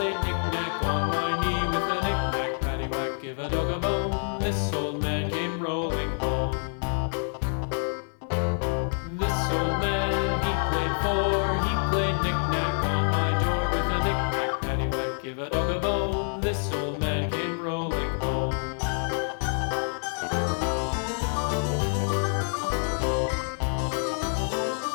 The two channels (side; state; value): right; silent; 60 dB below the other